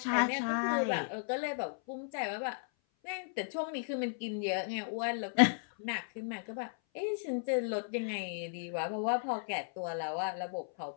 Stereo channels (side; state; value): right; silent; 54 dB below the other